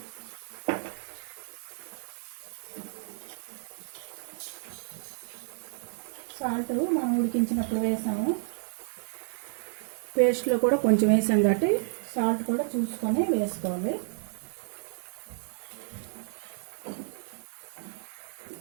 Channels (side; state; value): left; silent; digital silence